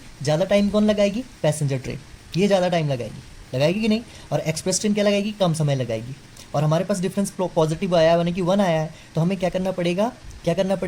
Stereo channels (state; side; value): identical; both; correlation 1.00